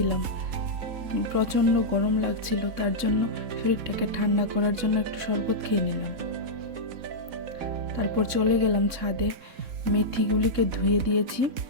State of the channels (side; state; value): left; late; 3.6 ms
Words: প্রচণ্ড গরম লাগছিল, তার জন্য শরীরটাকে ঠান্ডা করার জন্য একটু শরবত খেয়ে নিলাম। তারপর চলে গেলাম ছাদে। মেথিগুলিকে ধুয়ে দিয়েছি,